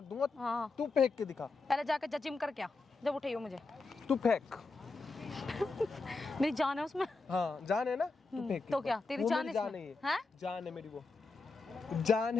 दूंगा। हाँ। तू फेंक के दिखा। पहले जाके जिम कर, क्या जब उठाइयो मुझे। तू फेंक। मेरी जान है उसमें। हाँ जान है ना, तू फेंक के तो दिखा। क्या तेरी वो जान मेरी है जान इसमें? है ये। हैं? जान है मेरी, वो जान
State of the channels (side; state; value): right; quieter; 3.8 dB